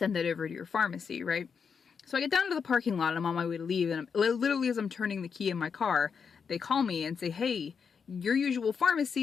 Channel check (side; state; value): right; quieter; 6.2 dB